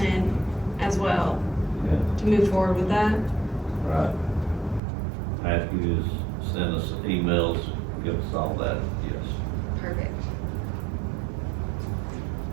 as well, Yeah. to move forward with that. Right. Matthews sent us emails, give us all that, yes.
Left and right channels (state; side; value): drops out; left; at 4.8 s